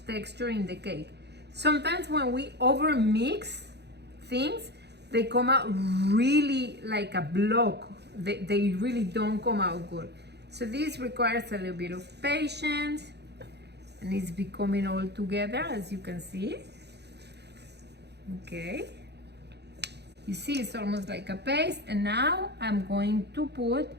texture in the cake. Sometimes when we overmix things, they come out really like a block. They really don't come out good. So this requires a little bit of patience, and it's becoming all together, as you can see. Okay. You see, it's almost like a paste. And now I'm going to put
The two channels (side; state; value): left; late; 0.49 ms